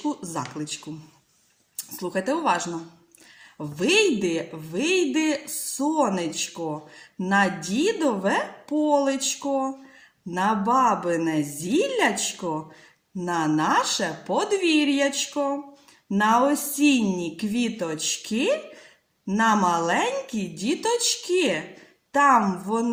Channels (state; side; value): identical; both; correlation 1.00